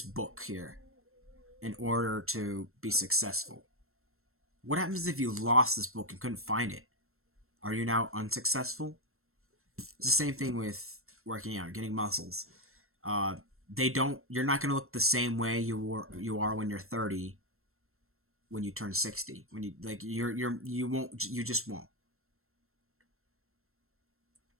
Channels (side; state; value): left; late; 0.62 ms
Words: book here in order to be successful. What happens if you lost this book and couldn't find it? Are you now unsuccessful? It's the same thing with working out, getting muscles. Uh, they don't. You're not going to look the same way you are when you're 30, when you turn 60. When you won't. You just won't.